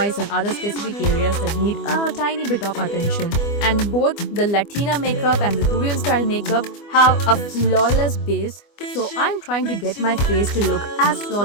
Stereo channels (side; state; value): right; late; 25 ms